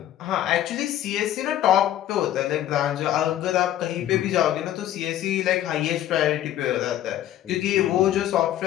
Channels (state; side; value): quieter; right; 12.4 dB